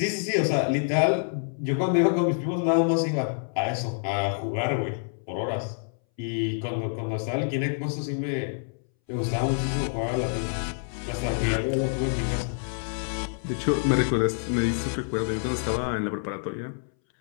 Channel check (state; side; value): silent; right; 60 dB below the other